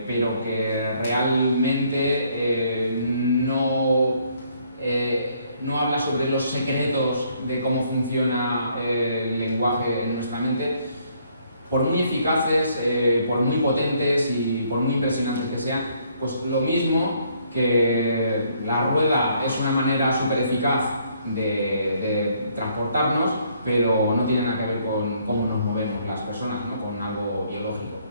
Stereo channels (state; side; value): inverted; both; correlation -0.67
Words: pero que realmente no habla sobre los secretos de cómo funciona el lenguaje en nuestra mente, por muy eficaces, por muy potentes y por muy impresionantes que sean, pues lo mismo que la rueda es una manera súper eficaz de transportarnos, pero no tiene nada que ver con cómo nos movemos las personas, ¿no? Con algo biológico.